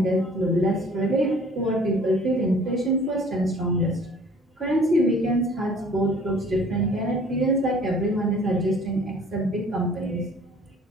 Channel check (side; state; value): both; normal; correlation 0.52